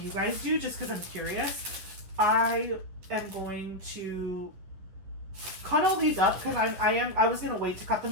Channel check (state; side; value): late; left; 11 ms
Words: guys do, just because I'm curious. I am going to cut all these up, because I was gonna wait to cut